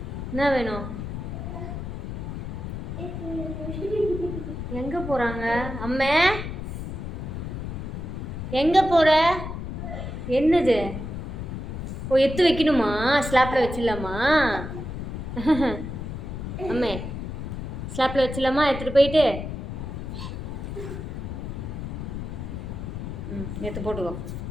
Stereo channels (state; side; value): noise; left; rumble, 6 dB below the sound